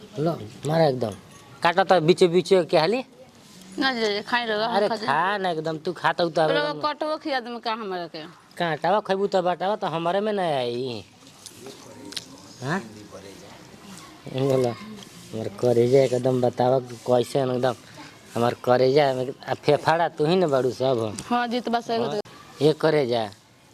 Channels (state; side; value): identical; both; correlation 1.00